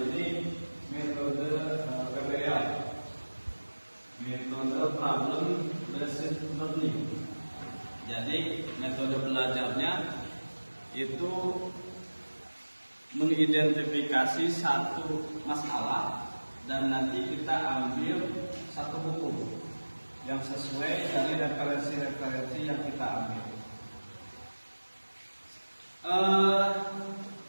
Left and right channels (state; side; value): inverted; both; correlation -1.00